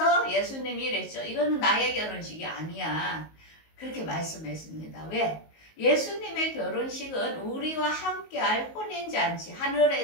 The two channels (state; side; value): late; right; 19 ms